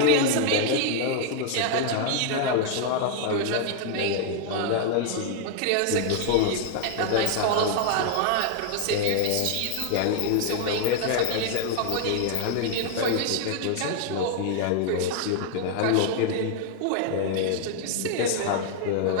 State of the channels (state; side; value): different; both; correlation 0.00